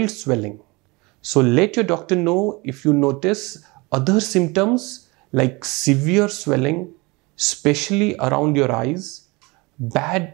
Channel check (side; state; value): left; quieter; 25.3 dB